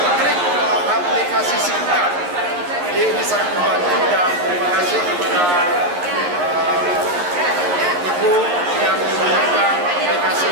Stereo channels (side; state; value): left; late; 11 ms